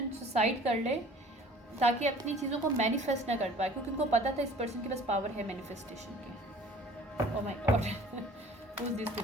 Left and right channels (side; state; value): both; normal; correlation 0.49